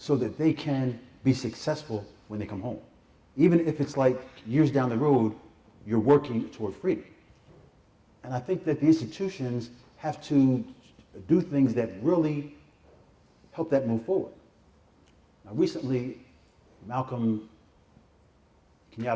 that they can be successful when they come home. Even if it's like years down the road, you're working toward freedom. And I think that the institutions have to do things that really help that move forward. Now, recently, Malcolm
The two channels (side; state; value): both; identical; correlation 1.00